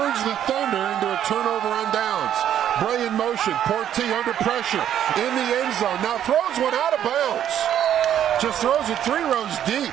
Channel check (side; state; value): left; quieter; 10.3 dB